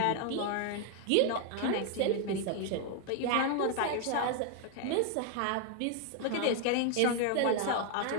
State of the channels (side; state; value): both; different; correlation 0.00